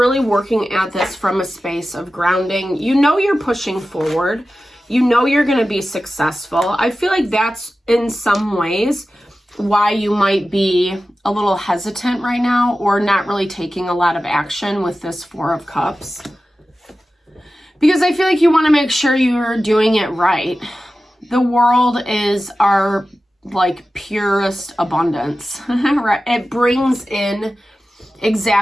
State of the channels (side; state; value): both; normal; correlation 0.94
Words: working at this from a space of grounding. You know you're pushing forward. You know you're going to be successful. I feel like that's in some ways why you might be a little hesitant right now or not really taking a lot of action with this Four of Cups. Because I feel like you want to make sure you're doing it right. The world is our like purest abundance, right? It brings in